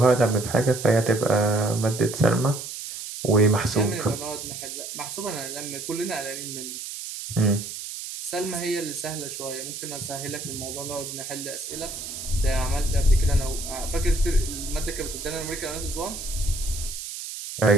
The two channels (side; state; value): right; noise; hiss, 8 dB below the sound